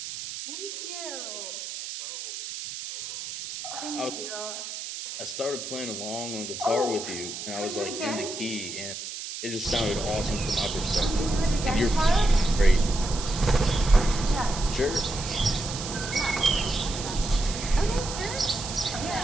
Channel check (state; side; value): noise; right; hiss, 8 dB below the sound